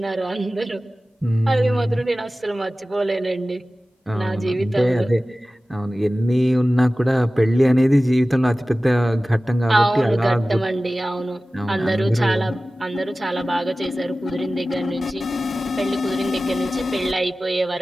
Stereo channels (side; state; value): both; normal; correlation 0.96